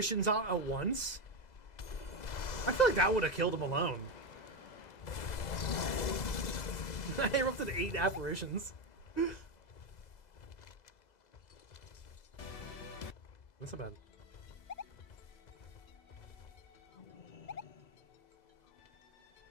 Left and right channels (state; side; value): late; right; 2.0 ms